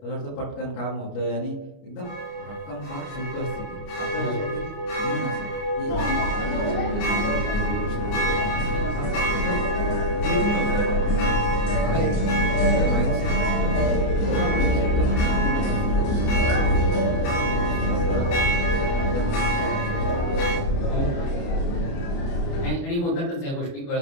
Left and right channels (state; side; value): late; right; 29 ms